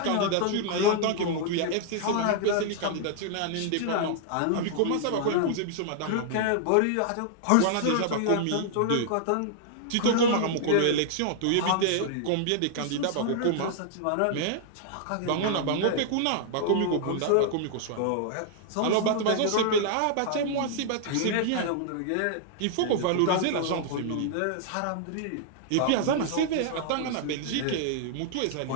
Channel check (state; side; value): different; both; correlation -0.01